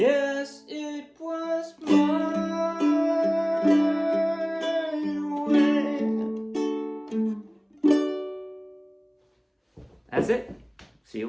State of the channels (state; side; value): identical; both; correlation 1.00